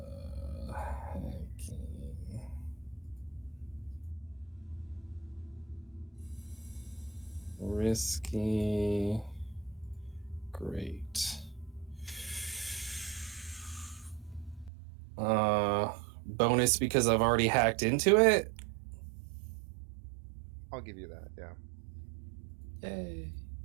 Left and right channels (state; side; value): drops out; left; at 14.7 s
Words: Risky. Great. Bonus because I've already hacked into it. I'll give you that. Yeah. Yay.